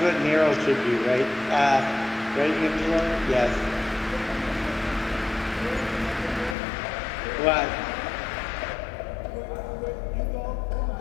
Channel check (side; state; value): right; drops out; at 6.6 s